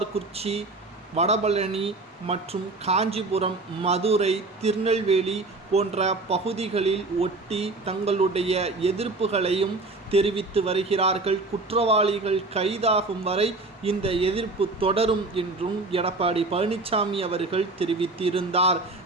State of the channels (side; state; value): left; quieter; 3.3 dB